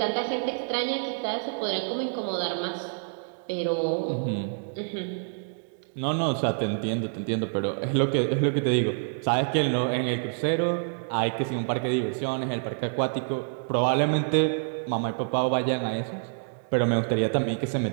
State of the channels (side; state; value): left; silent; digital silence